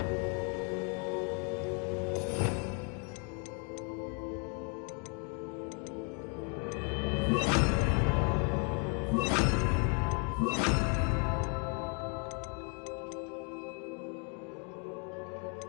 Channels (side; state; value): right; quieter; 36.8 dB